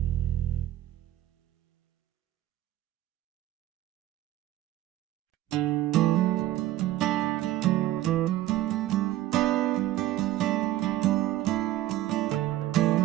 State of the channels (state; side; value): quieter; left; 14.6 dB